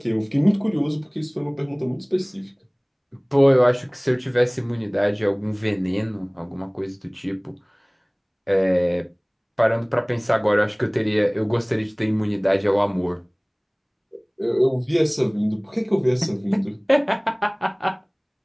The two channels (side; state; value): both; identical; correlation 1.00